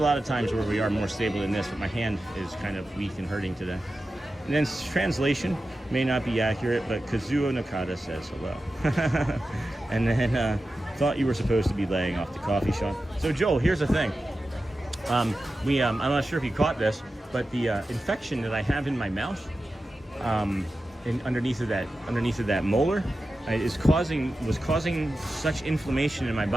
of times where we are more stable than this, but my hand is kind of weak and hurting today. And then translation may not be accurate, but Kazuo Nakata says hello. And then thought you were supposed to be laying off the coffee, Sean. So Joel, here's the thing. I'm not sure if you caught this, but the infection that I have in my mouth, underneath of that molar, was causing such inflammation in my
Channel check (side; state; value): both; normal; correlation 0.93